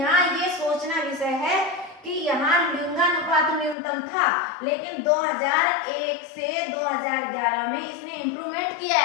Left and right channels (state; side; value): drops out; right; at 3.8 s